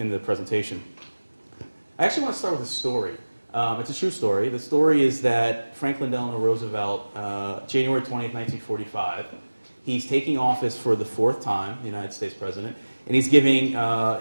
the presentation. I actually want to start with a story. It's a true story. The story is that Franklin Delano Roosevelt, January 20th, 1945, He's taking office for the 4th time, the United States president, and he's giving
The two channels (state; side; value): inverted; both; correlation -1.00